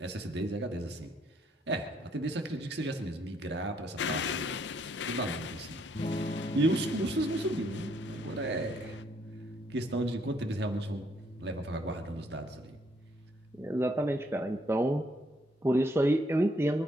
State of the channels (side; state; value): both; normal; correlation 0.69